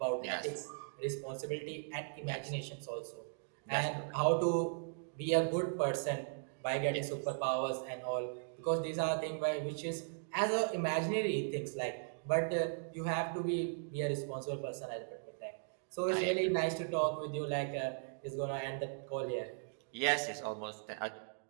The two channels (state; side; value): silent; left; digital silence